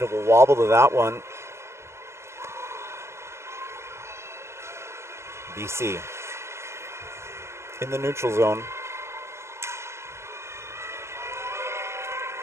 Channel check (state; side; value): late; left; 0.13 ms